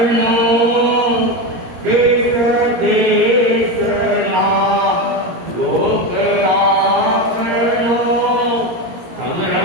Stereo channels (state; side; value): late; left; 17 ms